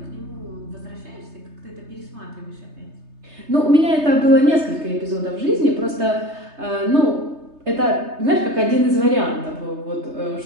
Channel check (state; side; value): late; left; 3.3 ms